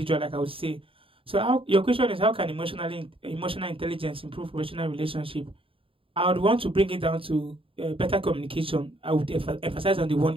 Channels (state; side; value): late; left; 0.26 ms